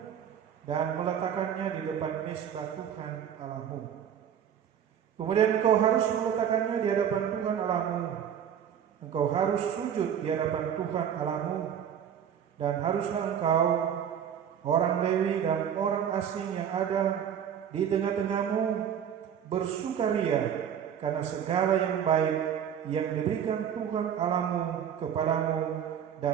dan meletakkannya di depan mezbah Tuhan Allahmu. Kemudian engkau harus meletakkannya di hadapan Tuhan Allahmu. Engkau harus sujud di hadapan Tuhan Allahmu, dan haruslah engkau, orang Lewi dan orang asing yang ada di tengah-tengahmu, bersukaria karena segala yang baik yang diberikan Tuhan Allahmu kepadamu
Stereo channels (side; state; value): left; quieter; 8.8 dB